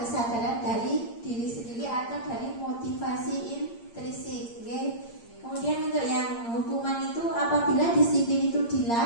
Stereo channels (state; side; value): late; right; 8.7 ms